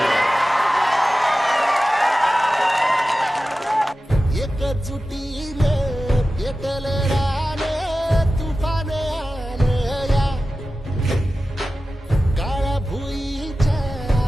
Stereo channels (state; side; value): normal; both; correlation 0.94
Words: एकजुटीने पेटले राने तुफान आले या काळ्या भुईच्या